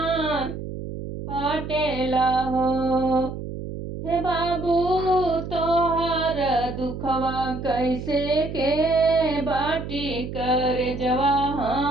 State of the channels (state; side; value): noise; right; hum, 8 dB below the sound